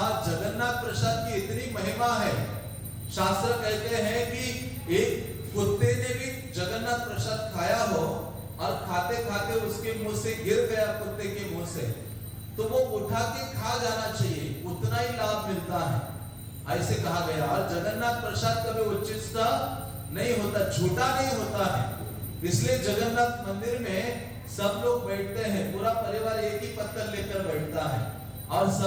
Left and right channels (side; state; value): both; identical; correlation 1.00